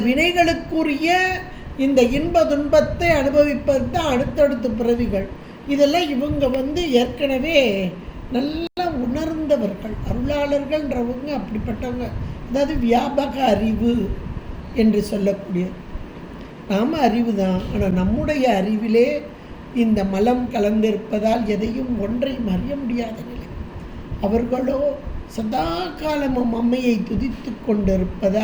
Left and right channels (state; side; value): identical; both; correlation 1.00